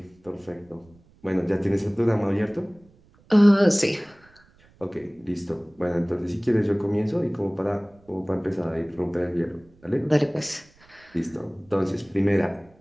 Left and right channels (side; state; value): right; noise; rumble, 30 dB below the sound